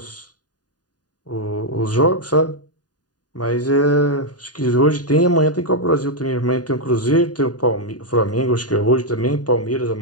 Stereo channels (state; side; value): late; right; 0.68 ms